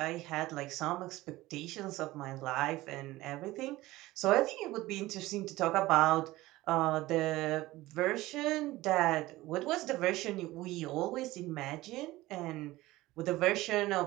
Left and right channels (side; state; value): left; quieter; 18.1 dB